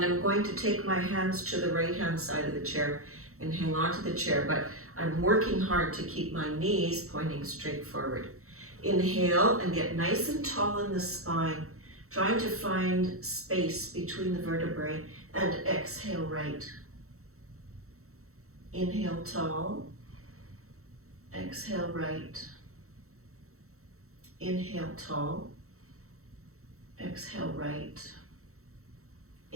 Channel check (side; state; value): left; late; 0.64 ms